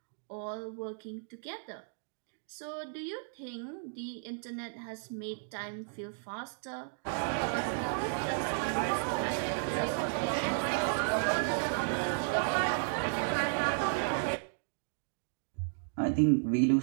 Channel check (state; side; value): silent; left; digital silence